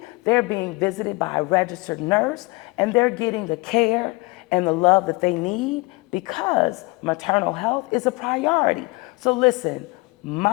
they're being visited by a registered nurse, and they're getting the care and the love that they need because maternal health is a priority. So listen,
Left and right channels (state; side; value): quieter; right; 25.5 dB